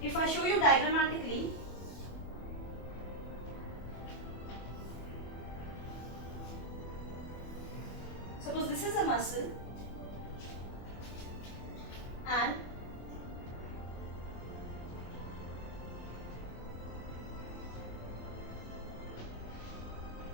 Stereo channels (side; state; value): right; late; 24 ms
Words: If I show you diagrammatically, suppose this is a muscle, and